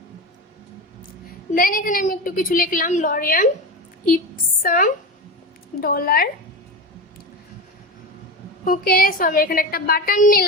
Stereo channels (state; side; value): normal; both; correlation 0.22